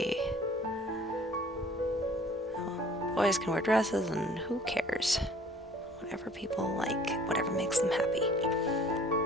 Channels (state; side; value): normal; both; correlation 0.52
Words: well, boys can wear dresses, and who cares? Whatever people like, whatever makes them happy.